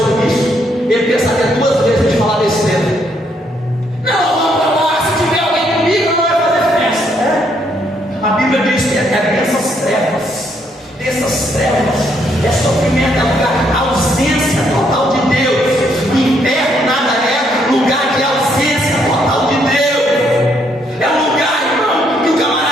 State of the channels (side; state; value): both; normal; correlation 0.72